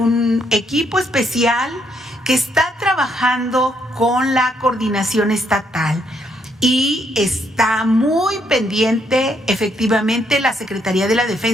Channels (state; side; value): normal; both; correlation 0.74